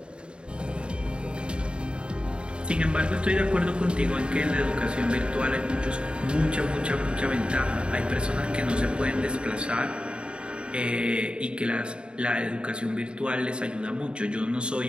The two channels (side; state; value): left; late; 0.053 ms